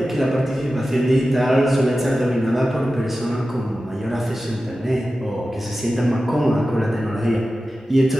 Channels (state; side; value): normal; both; correlation 0.94